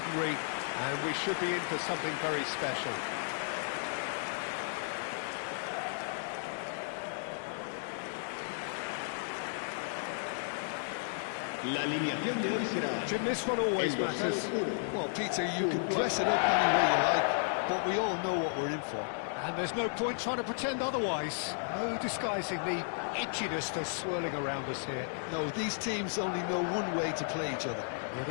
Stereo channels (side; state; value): right; silent; 55 dB below the other